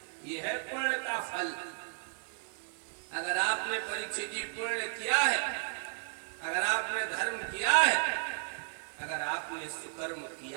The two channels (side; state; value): left; silent; digital silence